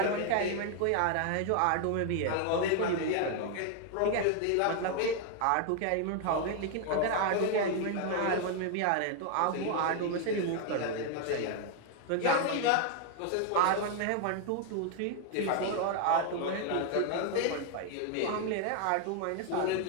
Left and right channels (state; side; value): different; both; correlation 0.00